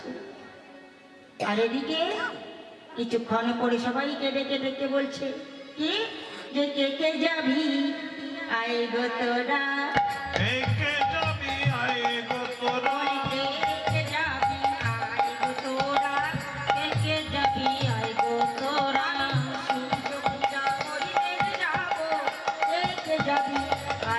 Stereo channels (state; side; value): identical; both; correlation 1.00